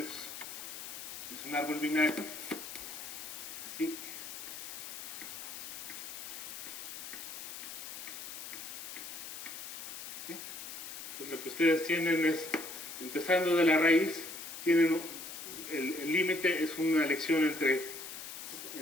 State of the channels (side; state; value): left; noise; hiss, 9 dB below the sound